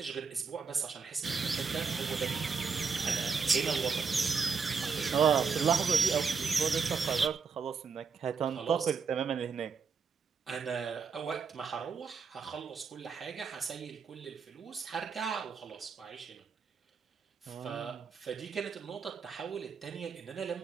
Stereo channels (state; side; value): quieter; left; 5.5 dB